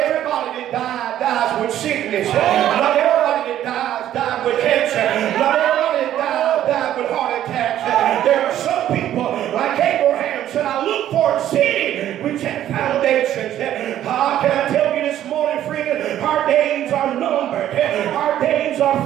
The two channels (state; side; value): quieter; left; 11.9 dB